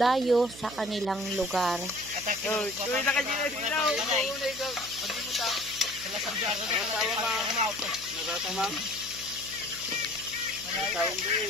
sa kanilang lugar.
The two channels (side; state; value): right; noise; hum, 17 dB below the sound